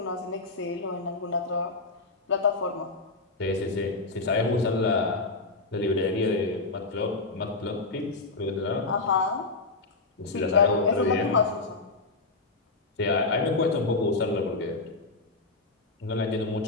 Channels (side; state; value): right; quieter; 3.6 dB